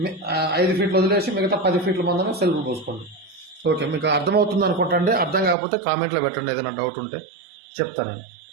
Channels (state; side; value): drops out; left; at 5.6 s